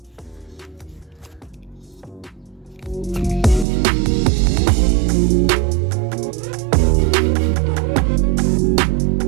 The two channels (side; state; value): left; drops out; at 3.7 s